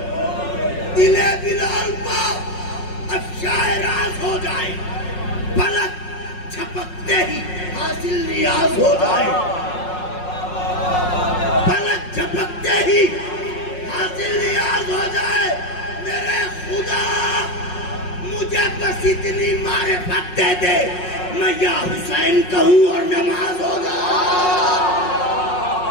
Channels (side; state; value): right; late; 5.5 ms